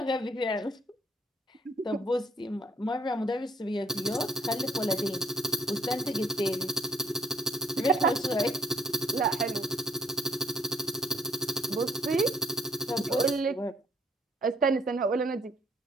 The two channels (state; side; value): normal; both; correlation 0.62